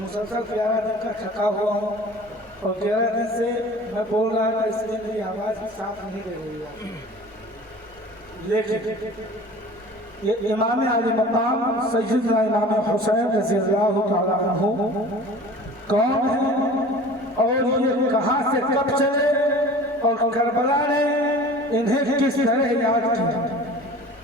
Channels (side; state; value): both; normal; correlation 0.42